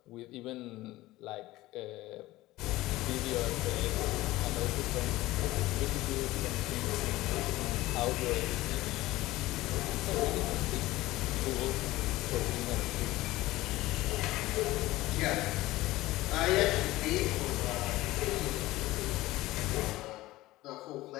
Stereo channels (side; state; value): right; quieter; 17.8 dB